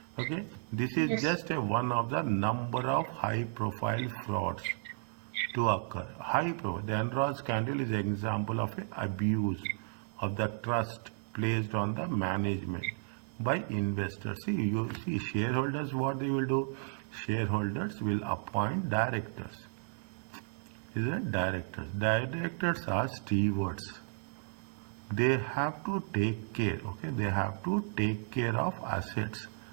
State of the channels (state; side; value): silent; left; 55 dB below the other